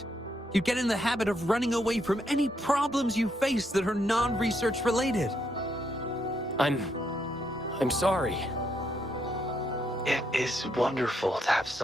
You get in the habit of running away from any problems you face that are non-research related. I'm sorry. It is wonderful to have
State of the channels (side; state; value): both; normal; correlation 0.76